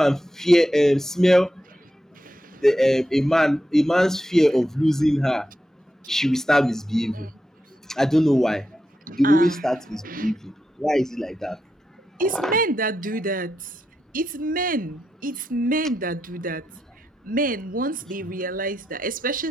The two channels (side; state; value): both; normal; correlation 0.86